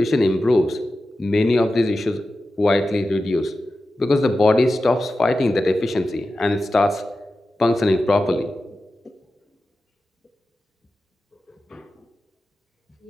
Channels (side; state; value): both; normal; correlation 0.93